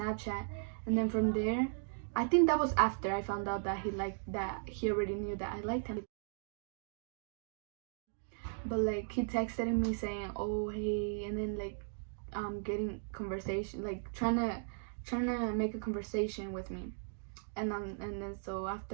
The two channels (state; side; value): silent; left; digital silence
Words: and then from there, I think that was after I found out that he already knew that I liked him. But like he texted me saying, oh hey, and then like getting conversation, like trying to make a conversation with me. And then so